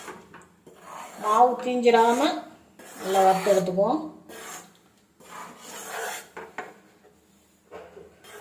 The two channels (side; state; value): both; identical; correlation 1.00